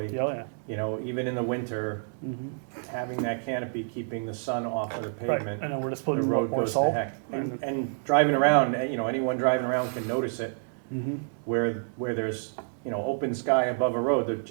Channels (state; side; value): silent; left; digital silence